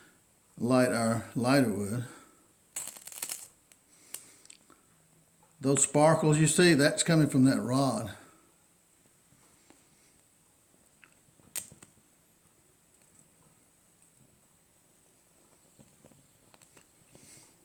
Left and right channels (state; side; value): identical; both; correlation 1.00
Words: light our lighter wood. Those sparkles you see, that's coming from that rod.